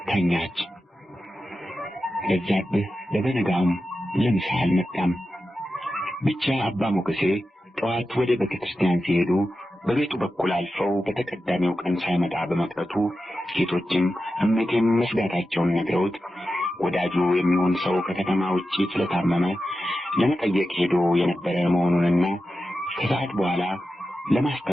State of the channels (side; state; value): both; normal; correlation 0.92